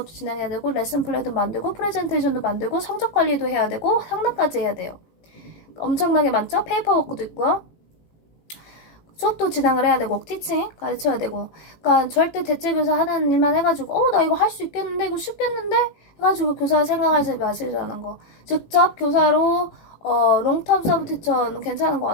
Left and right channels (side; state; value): right; late; 18 ms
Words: 진행해야 되고 레슨 플랜도 만들고 프레젠테이션도 만들고 성적 관리도 해야 되고 상담까지 해야 돼요. 엄청나게 많죠? 페이퍼워크도 있고요. 수업도 진행을 해야 되고 티칭 가르쳐야 되고. 그러니까 절대 대체교사 하는 일만 해가지고 나 이거 할 수 있겠는데 이거 쉽겠는데 해가지고 교사 생각하지 마시라는 거. 직접 교사로 롱텀 서브 티처는 괜찮은 것